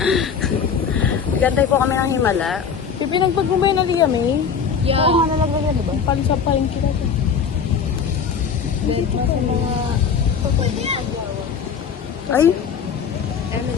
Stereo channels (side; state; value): right; quieter; 6.6 dB